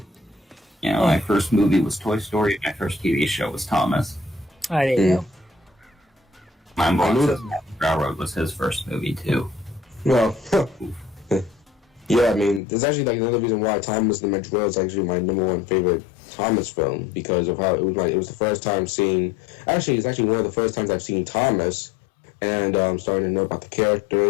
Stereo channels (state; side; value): drops out; right; at 12.6 s